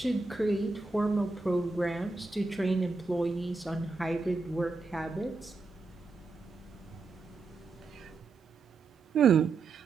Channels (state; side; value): quieter; left; 3.9 dB